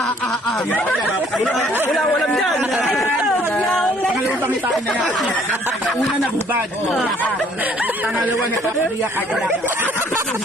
Wala, walang dyan. Pangalawang pangitain na yan. Una na bubad. Pangalawa na papabiyak.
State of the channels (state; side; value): normal; both; correlation 0.60